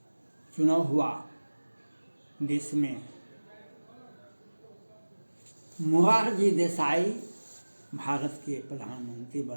चुनाव हुआ देश में, मोरारजी देसाई भारत के प्रधानमंत्री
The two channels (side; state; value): both; inverted; correlation -1.00